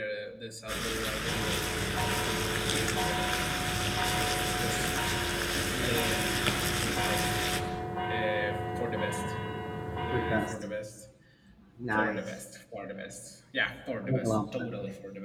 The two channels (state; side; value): identical; both; correlation 1.00